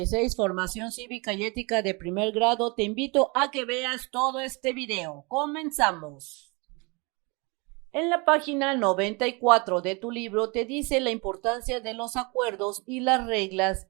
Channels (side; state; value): left; quieter; 28.9 dB